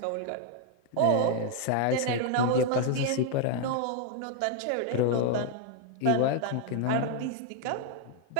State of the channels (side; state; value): both; different; correlation 0.00